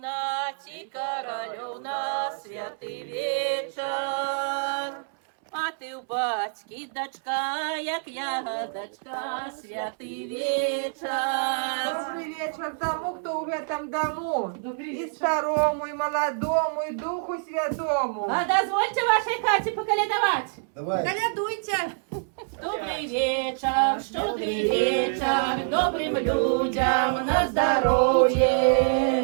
королев на святый вечер. А ты у батьки дочка, як ягодочка, святый вечер. Добрый вечер тому, кто в этом дому. И старому, и молодому, и Духу Святому. А дозвольте вашей хате поколедовать. Давай. Колядуйте. Добрый вечер, щедрый вечер, добрым людям на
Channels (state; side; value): silent; left; 61 dB below the other